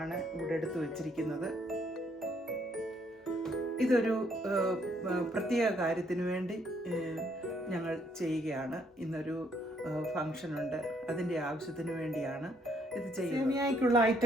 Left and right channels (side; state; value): both; normal; correlation 0.69